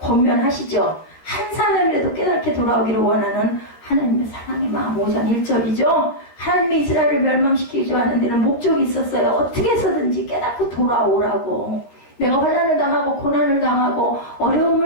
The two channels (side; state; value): right; late; 13 ms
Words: 한 사람이라도 깨닫게 돌아오기를 원하는 하나님의 사랑의 마음 5장 1절이죠. 하나님의 이스라엘을 멸망시키기 하는 데는 목적이 있었어요. 어떻게 해서든지 깨닫고 돌아오라고. 내가 환난을 당하고 고난을 당하고